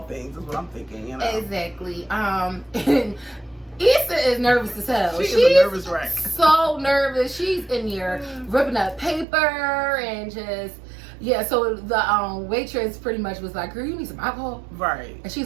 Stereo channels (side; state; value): left; drops out; at 9.2 s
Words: things. Is what I'm thinking, you know. Exactly. And Issa is nervous as hell. She's a nervous wreck. So nervous. She's in here ripping up paper and just so the waitress pretty much was like, girl, you need some alcohol? Right. And